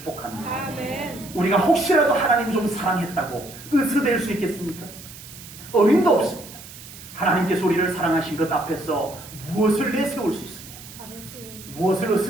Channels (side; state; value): right; noise; hiss, 16 dB below the sound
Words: 아멘. 우리가 혹시라도 하나님 좀 사랑했다고 으스댈 수 있겠습니까? 어림도 없습니다. 하나님께서 우리를 사랑하신 것 앞에서 무엇을 내세울 수 있으며 아버지. 무엇을